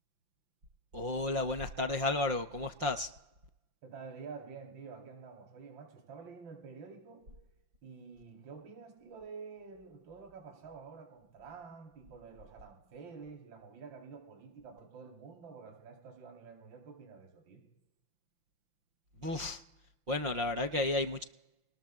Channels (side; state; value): left; late; 5.5 ms